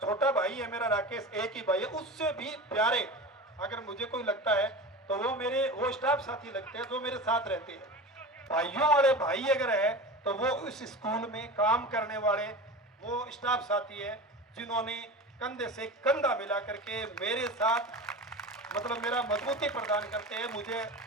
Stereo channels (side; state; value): both; normal; correlation 0.30